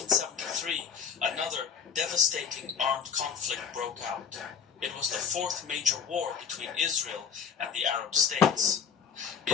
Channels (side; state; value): right; quieter; 6.9 dB